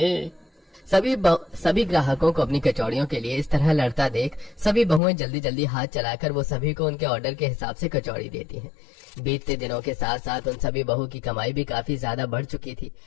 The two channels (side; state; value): right; drops out; at 5.0 s